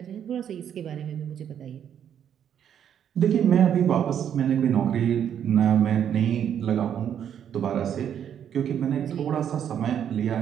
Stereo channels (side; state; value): left; quieter; 9.1 dB